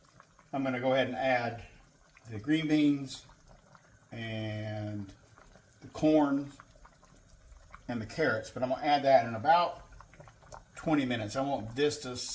I'm going to go ahead and add the green beans and the corn and the carrots, but I'm going to add that in about 20 minutes. I want this to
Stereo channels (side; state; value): both; identical; correlation 1.00